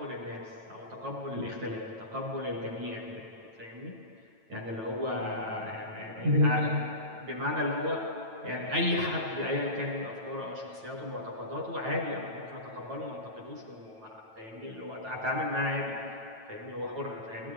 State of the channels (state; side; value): late; left; 9.1 ms